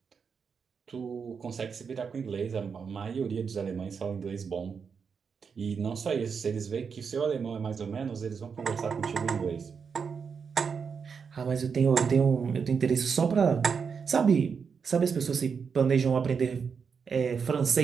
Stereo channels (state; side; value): quieter; left; 6.1 dB